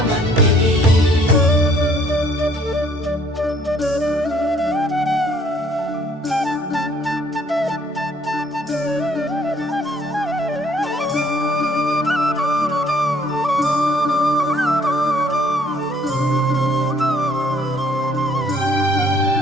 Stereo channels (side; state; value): both; normal; correlation 0.61